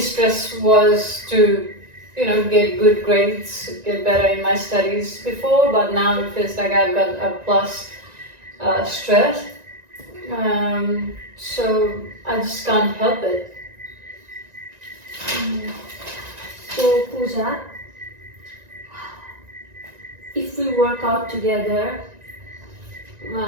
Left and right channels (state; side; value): late; left; 1.9 ms